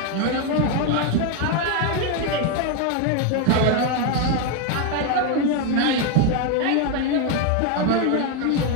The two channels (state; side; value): different; both; correlation 0.01